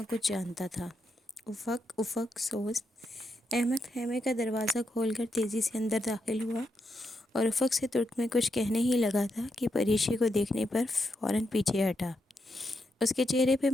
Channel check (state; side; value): normal; both; correlation 0.83